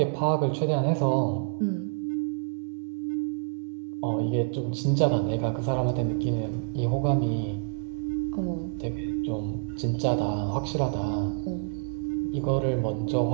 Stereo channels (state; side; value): silent; left; 60 dB below the other